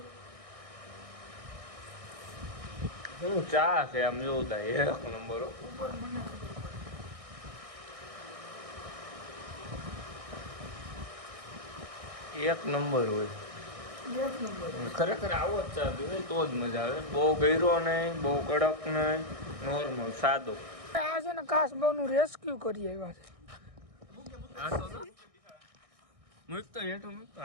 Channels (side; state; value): left; late; 1.6 ms